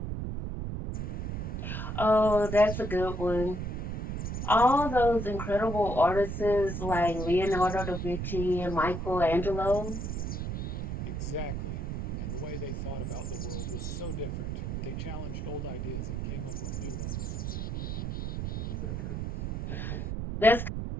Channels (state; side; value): noise; right; rumble, 3 dB below the sound